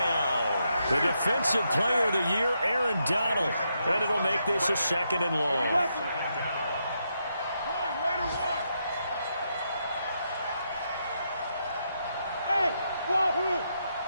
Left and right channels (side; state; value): both; inverted; correlation -0.81